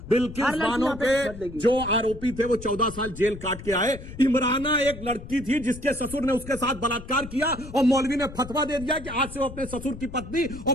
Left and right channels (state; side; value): noise; left; rumble, 13 dB below the sound